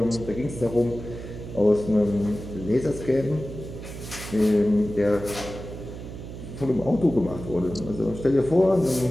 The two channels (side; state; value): right; noise; hum, 11 dB below the sound